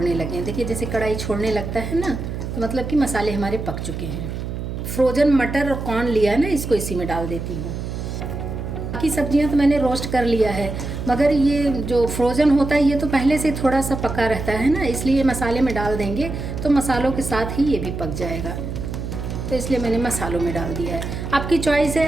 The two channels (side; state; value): right; noise; hum, 6 dB below the sound